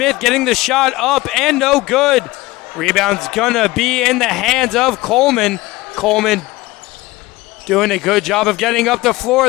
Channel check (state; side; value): quieter; right; 19.9 dB